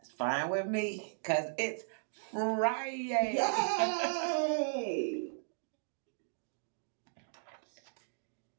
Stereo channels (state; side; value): silent; left; digital silence